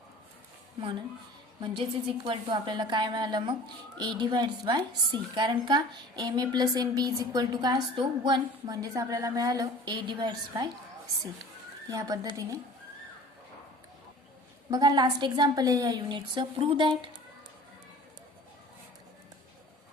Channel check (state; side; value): normal; both; correlation 0.44